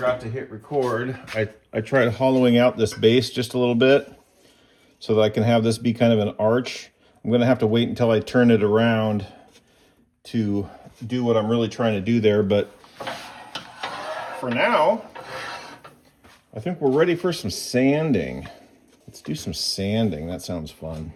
to hit record. I tried hollowing out this base just a little bit so that I can have this be kind of an arch. I'm going to have to wait until I turn it around to do what I'm really trying to do there. But for now, I think we're ready for some sanding. Let's do some sanding. That sounds fun.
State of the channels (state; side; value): identical; both; correlation 1.00